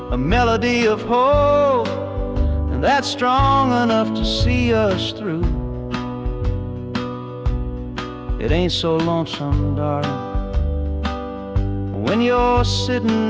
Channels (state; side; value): identical; both; correlation 1.00